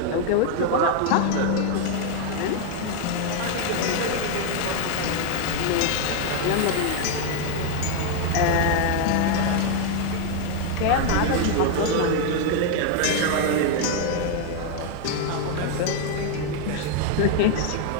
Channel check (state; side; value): different; both; correlation 0.00